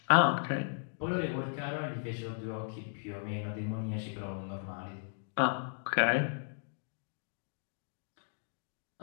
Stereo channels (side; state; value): right; silent; digital silence